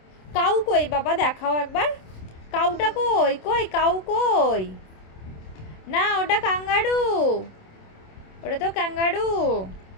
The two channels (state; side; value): late; right; 27 ms